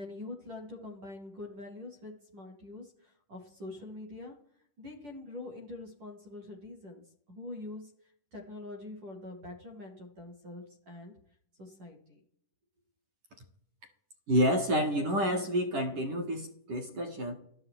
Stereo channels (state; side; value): late; left; 10 ms